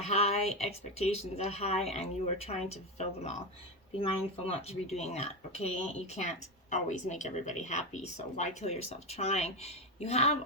high, expectations are high, and you are trying to fulfill them all. Be mindful not to be doing that, okay? You can't always make everybody happy, so why kill yourself trying? You have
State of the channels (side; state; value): both; normal; correlation 0.14